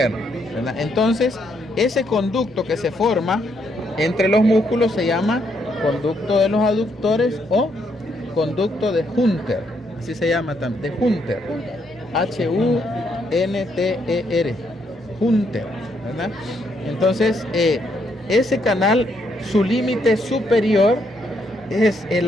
¿verdad? Entonces, ese conducto que se forma entre los músculos se llama conducto de los aductores o conducto de Hunter, así se llama también, de Hunter, Hunter, Hunter, ¿verdad? Entonces, ese canal, su límite superior es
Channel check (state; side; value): normal; both; correlation 0.74